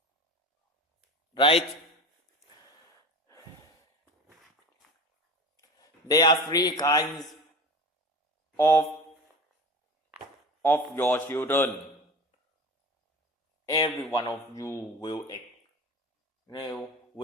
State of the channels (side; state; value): both; normal; correlation 0.33